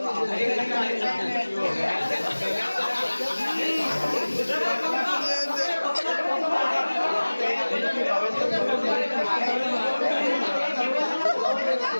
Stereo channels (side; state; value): both; inverted; correlation -1.00